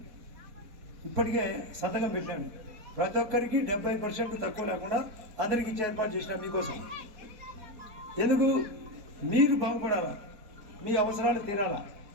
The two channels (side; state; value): left; late; 4.2 ms